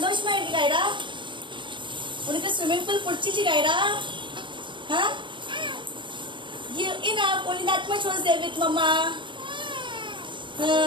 இருக்கு கைரா? உனக்கு swimming pool பிடிச்சிச்சு Khaira? Huh? You enough, only that much was there with mama.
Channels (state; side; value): late; left; 0.23 ms